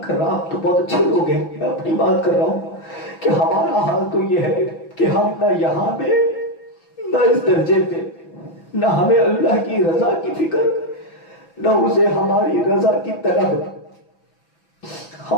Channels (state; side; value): late; right; 6.0 ms